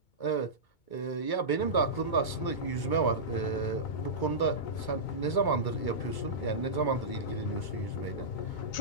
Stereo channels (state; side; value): late; right; 2.2 ms